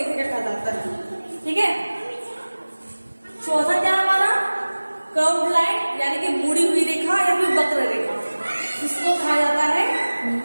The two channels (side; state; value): both; inverted; correlation -1.00